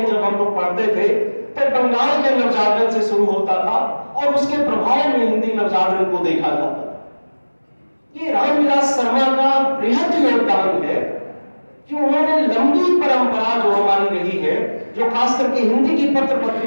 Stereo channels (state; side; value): inverted; both; correlation -1.00